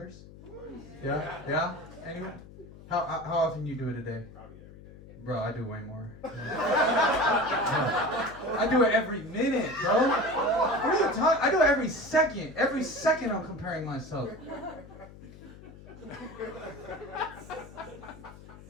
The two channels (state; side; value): noise; left; hum, 18 dB below the sound